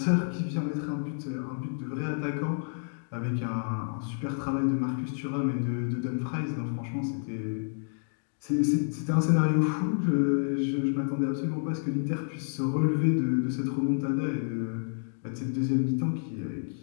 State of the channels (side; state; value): right; silent; digital silence